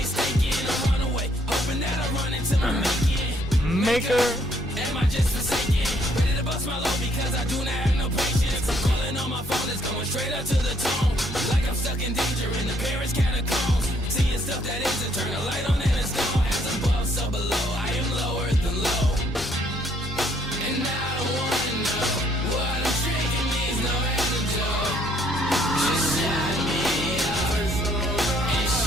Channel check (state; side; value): normal; both; correlation 0.66